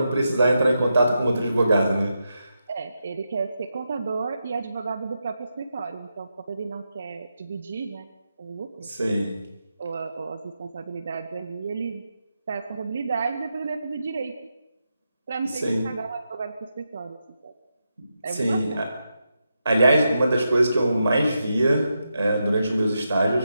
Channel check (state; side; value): inverted; both; correlation -0.86